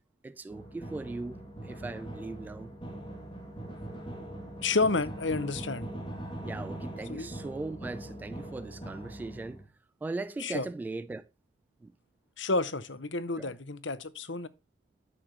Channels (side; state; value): both; normal; correlation 0.12